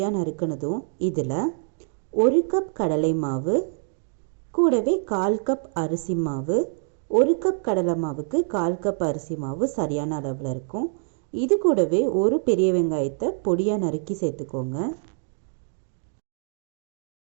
நறுக்கினதும் இதில் 1 கப் கடலை மாவு, கூடவே 1/4 கப் அரிசி மாவு, 1 கப் கடலை மாவுக்கு 1/4 கப் அரிசி மாவு சரியான அளவில் இருக்கும். இது கூடவே ஒரு பெரிய வெங்காயத்தை பொடியாக நறுக்கி சேர்த்துக்கோங்க.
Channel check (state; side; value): silent; left; 60 dB below the other